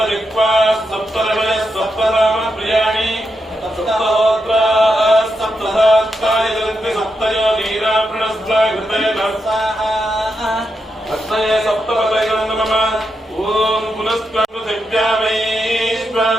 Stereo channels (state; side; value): normal; both; correlation 0.85